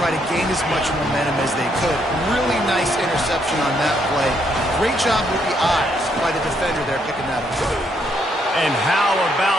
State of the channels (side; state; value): both; normal; correlation 0.73